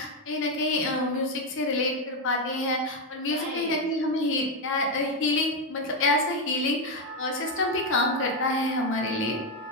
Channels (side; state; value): both; normal; correlation 0.06